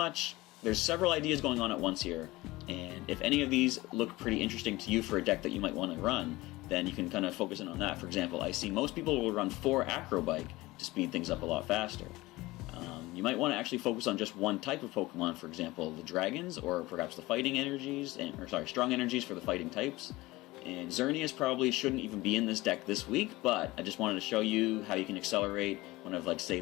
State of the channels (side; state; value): right; quieter; 19.9 dB